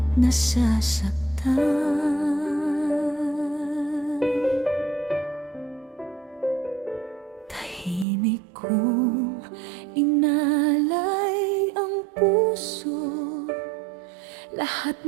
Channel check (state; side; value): drops out; left; at 8.1 s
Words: nasasaktan. Tahimik kong inalay ang puso, lahat